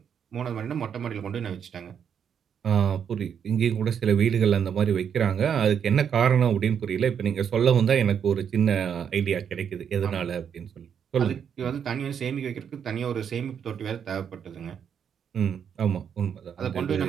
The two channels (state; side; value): quieter; left; 7.9 dB